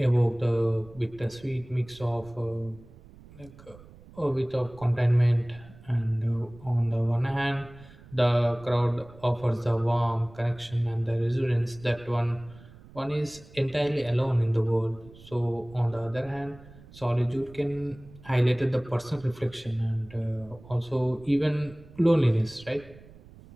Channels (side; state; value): right; noise; rumble, 21 dB below the sound